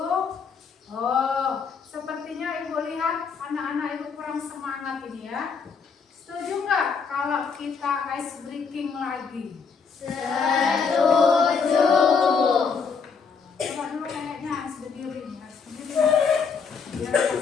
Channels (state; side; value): quieter; right; 5.6 dB